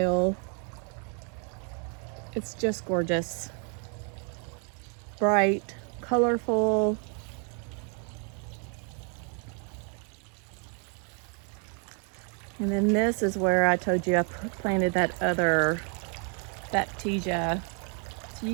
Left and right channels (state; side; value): quieter; left; 39.8 dB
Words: It's just gorgeous. Bright, colorful. And then this is where I told you I planted that other Baptisia. So